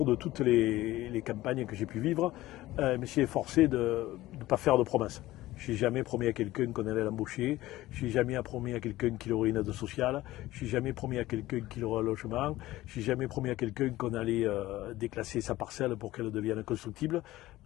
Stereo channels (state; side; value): quieter; right; 16.7 dB